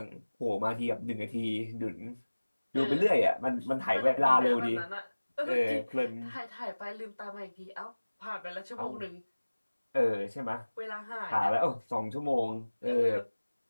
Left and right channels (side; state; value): both; inverted; correlation -1.00